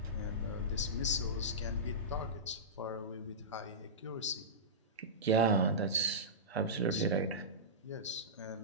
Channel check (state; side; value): normal; both; correlation -0.16